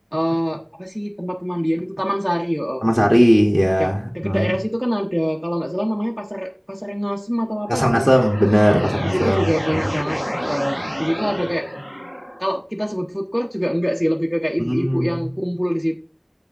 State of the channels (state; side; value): identical; both; correlation 1.00